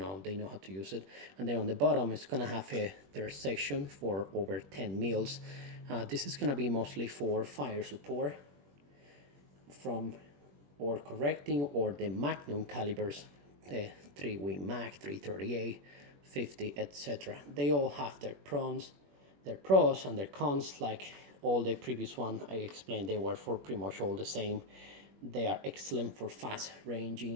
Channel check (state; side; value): late; left; 21 ms